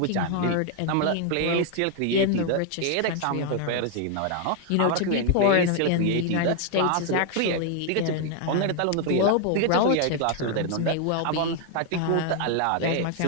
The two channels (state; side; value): different; both; correlation 0.00